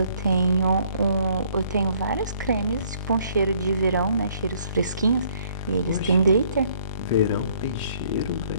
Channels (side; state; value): both; inverted; correlation -0.62